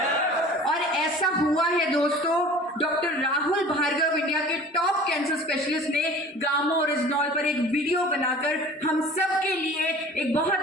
और ऐसा हुआ है दोस्तों। डॉक्टर राहुल भार्गव, इंडिया के टॉप कैंसर स्पेशलिस्ट, ने गामा ओरिजिनल पर एक वीडियो बनाकर हम सब के लिए एक बहुत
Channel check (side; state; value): both; normal; correlation 0.44